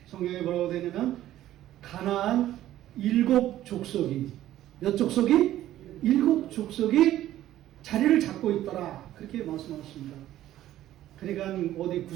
성경에 뭐라고 되냐면 가나안 7족속이, 몇 족속이? 7족속이 자리를 잡고 있더라. 그렇게 말씀하셨습니다. 그러니까 어디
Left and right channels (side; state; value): left; quieter; 13.4 dB